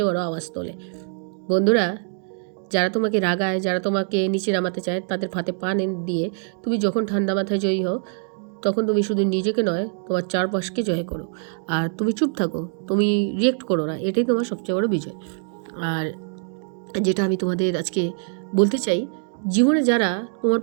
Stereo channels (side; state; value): left; silent; 56 dB below the other